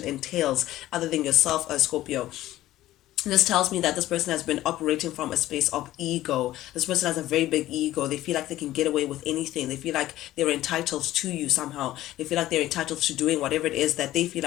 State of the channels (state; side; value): quieter; right; 14.9 dB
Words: entails, other than yourself, Scorpio, this tells me that this person has been operating from a space of ego. This person has a very big ego. They feel like they can get away with anything. They feel like they're entitled to you somehow. They feel like they're entitled to doing whatever it is that they feel